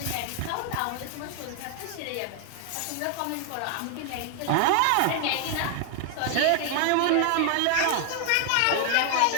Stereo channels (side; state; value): both; different; correlation 0.00